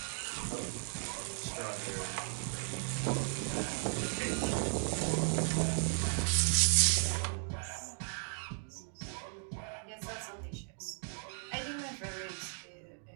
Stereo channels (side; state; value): left; silent; 54 dB below the other